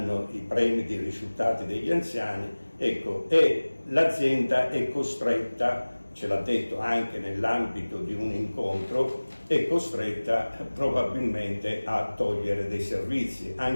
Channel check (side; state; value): both; inverted; correlation -1.00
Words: i premi dei risultati degli anziani, ecco, e l'azienda è costretta, ce l'ha detto anche nell'ambito di un incontro, è costretta probabilmente a togliere dei servizi,